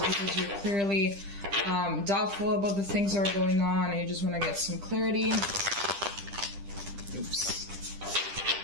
you're clearly doubtful about the things that are going on and you just want to get some clarity. Oops.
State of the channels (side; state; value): left; late; 10 ms